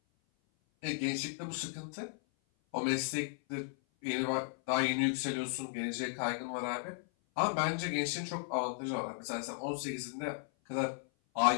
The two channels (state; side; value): silent; right; 54 dB below the other